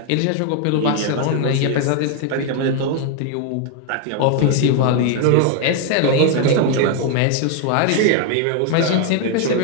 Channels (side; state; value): both; different; correlation 0.00